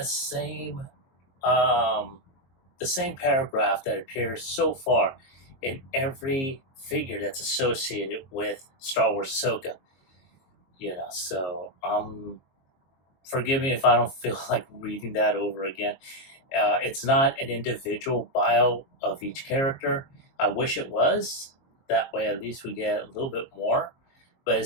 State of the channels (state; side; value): late; right; 22 ms